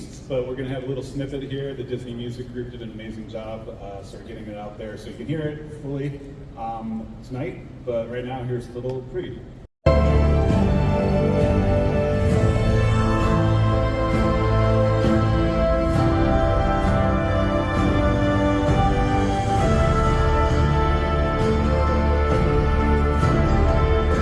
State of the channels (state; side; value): identical; both; correlation 1.00